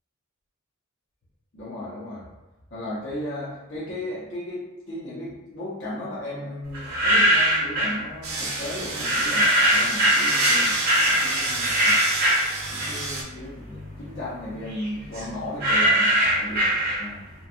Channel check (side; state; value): both; normal; correlation 0.07